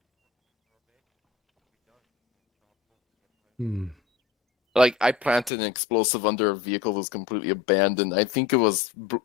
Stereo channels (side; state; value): right; drops out; at 5.5 s